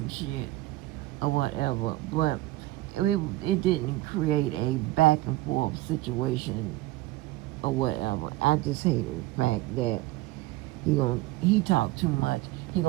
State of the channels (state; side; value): quieter; left; 17.8 dB